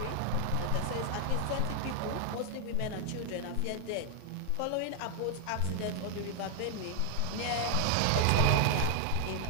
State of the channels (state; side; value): different; both; correlation 0.00